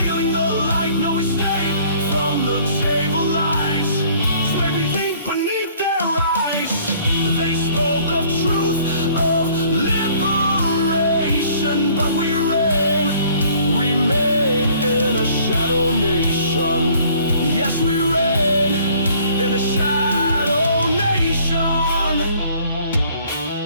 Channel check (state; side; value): inverted; both; correlation -0.57